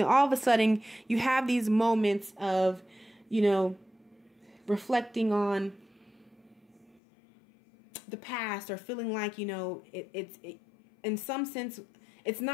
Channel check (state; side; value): drops out; right; at 7.0 s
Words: all of a sudden you have these moments of, you know, reflecting on the past or feeling like, you know, it's in some sense, it's